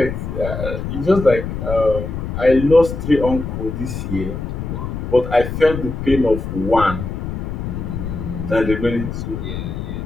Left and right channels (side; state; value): left; noise; rumble, 5 dB below the sound